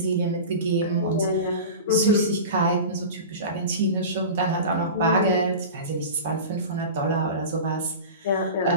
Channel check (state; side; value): inverted; both; correlation -0.31